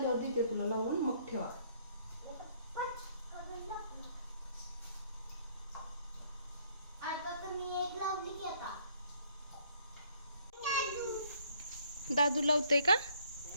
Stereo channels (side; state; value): both; inverted; correlation -0.64